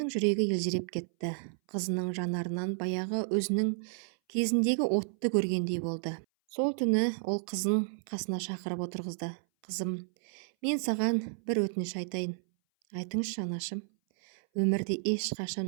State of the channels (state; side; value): silent; left; 57 dB below the other